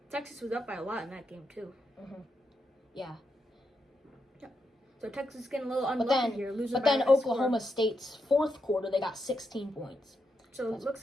Texas was up by a lot in that game too. Yeah. So Texas is getting a little unlucky here. But then Oklahoma State's 4th quarter, they got 16 points. So it looks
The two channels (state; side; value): normal; both; correlation 0.83